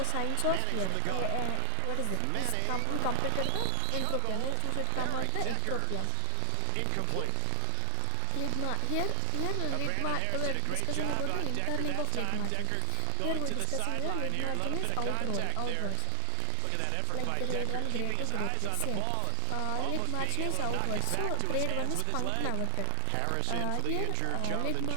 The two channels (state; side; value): different; both; correlation 0.00